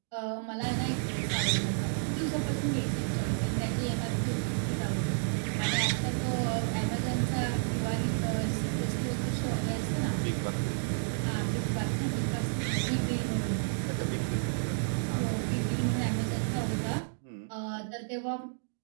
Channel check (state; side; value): silent; left; digital silence